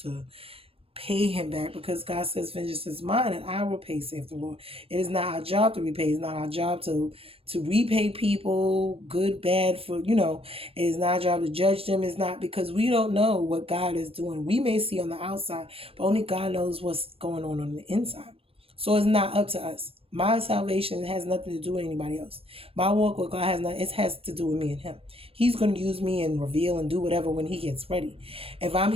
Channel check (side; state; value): left; late; 0.28 ms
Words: to pay Him back, because God says, vengeance is mine and I will pay, saith the Lord. It is not our job to repay. It's not our job to repay people, good, bad, for, it is not our job to judge them. It's not, because we don't know what God is doing. We may see on the outside, but only God knows what's going on the inside. So it's not up to us. My salvation has nothing to do with anybody else. My walk with God has to do with me and Him. He's going to use me and reveal and do whatever when He gets ready. If I'm